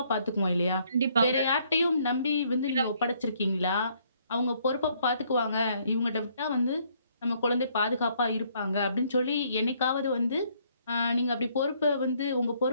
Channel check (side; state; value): both; inverted; correlation -0.67